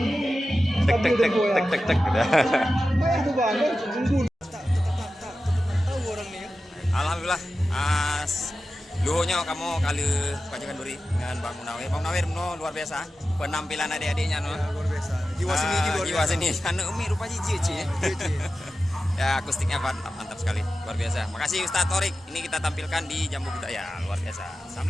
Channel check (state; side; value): normal; both; correlation 0.93